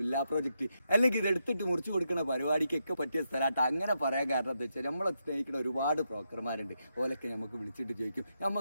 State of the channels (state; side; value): inverted; both; correlation -0.83